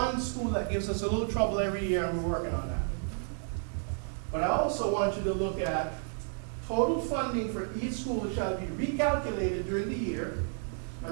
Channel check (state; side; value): silent; left; 57 dB below the other